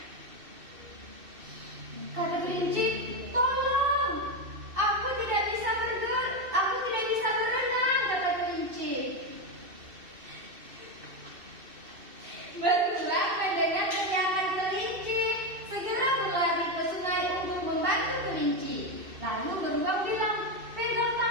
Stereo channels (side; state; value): left; late; 2.7 ms